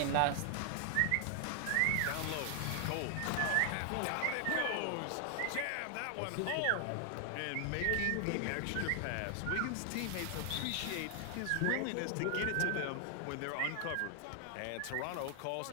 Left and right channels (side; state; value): both; different; correlation 0.00